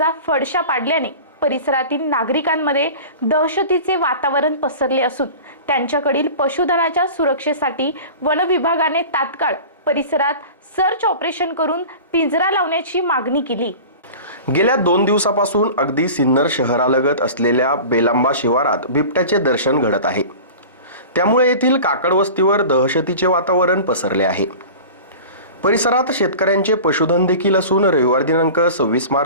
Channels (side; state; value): both; inverted; correlation -0.37